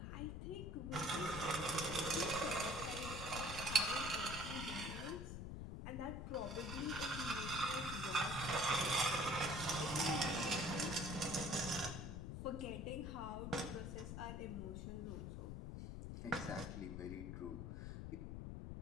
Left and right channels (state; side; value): noise; left; rumble, 6 dB below the sound